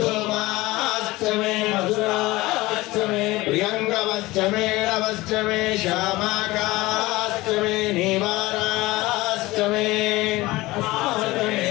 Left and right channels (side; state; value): right; quieter; 19.8 dB